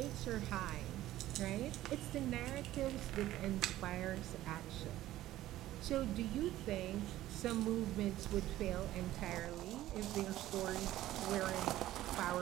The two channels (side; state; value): left; quieter; 14.7 dB